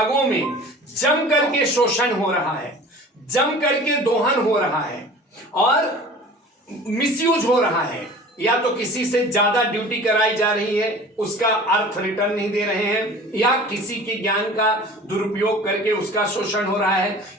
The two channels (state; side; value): normal; both; correlation 0.42